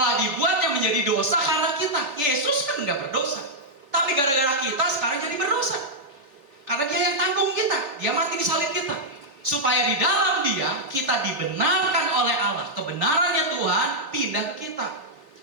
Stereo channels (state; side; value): late; left; 3.5 ms